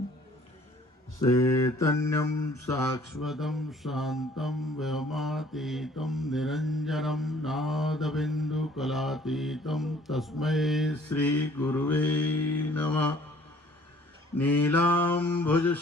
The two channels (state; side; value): normal; both; correlation 0.56